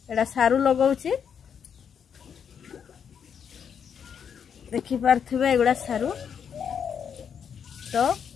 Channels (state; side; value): quieter; right; 7.5 dB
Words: एटा सारू लगाउछि देखि पारथिबे एगुडा सारू तो